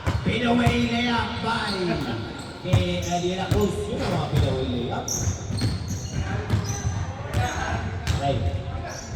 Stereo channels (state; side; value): identical; both; correlation 1.00